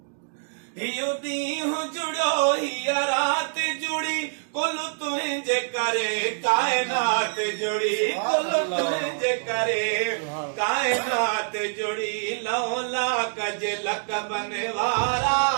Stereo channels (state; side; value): silent; left; digital silence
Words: हियो ॾींहुं जुड़ो हीअ राति जुड़ी कुल तुंहिंजे करे काइनात जुड़ी कुल तुंहिंजे करे काइनात जुड़ी लौला कजे लक़बन वारा